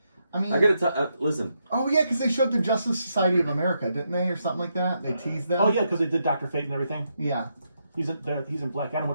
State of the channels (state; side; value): inverted; both; correlation -0.81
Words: I mean, I gotta tell. Listen. oh yeah, because they showed the Justice Society of America, didn't they, or something like that? They teased them. Oh yeah, because they did Dr. Fate and everything. Yeah. He's in Black Adam,